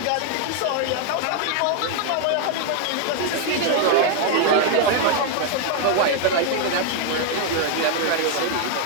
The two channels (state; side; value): different; both; correlation 0.00